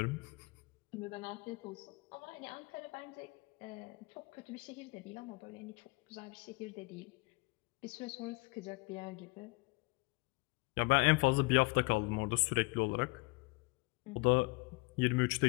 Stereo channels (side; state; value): right; quieter; 26.0 dB